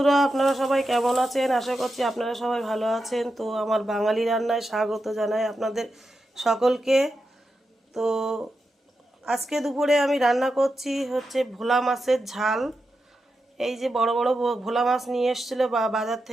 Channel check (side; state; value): both; normal; correlation 0.88